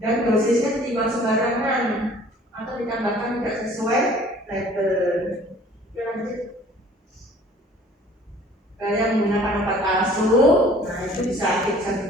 Dan dosisnya ditimbang sembarangan atau ditambahkan tidak sesuai label. Oke lanjut. Yang menggunakan obat palsu, nah itu bisa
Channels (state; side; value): normal; both; correlation 0.52